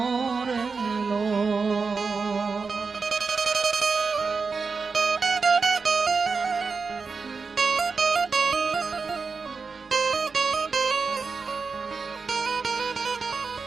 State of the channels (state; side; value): quieter; left; 4.8 dB